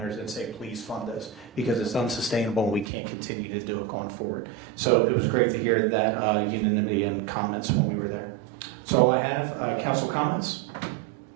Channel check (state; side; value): drops out; left; at 2.9 s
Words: and say, please fund us, because it's unsustainable and we can't continue to do it going forward. So it was great to hear that unanimity and comments when we were there. That's all I have. Council comments?